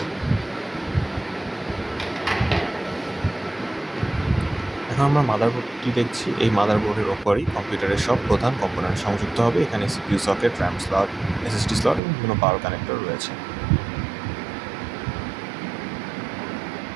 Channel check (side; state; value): left; drops out; at 12.0 s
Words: এখন আমরা মাদারবোর্ডটি দেখছি। এই মাদারবোর্ডের ওপরই কম্পিউটারের সব প্রধান কম্পোনেন্ট সংযুক্ত হবে। এখানে CPU socket, RAM slot, SSD slot এবং বিভিন্ন পাওয়ার কানেক্টর রয়েছে।